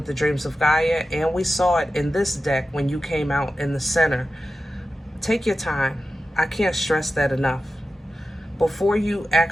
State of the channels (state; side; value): normal; both; correlation 0.93